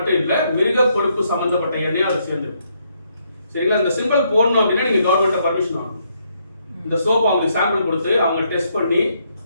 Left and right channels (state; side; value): inverted; both; correlation -0.74